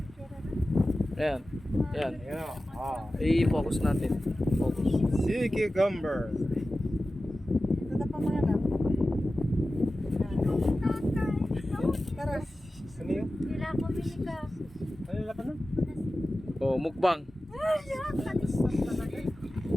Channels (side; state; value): both; normal; correlation 0.95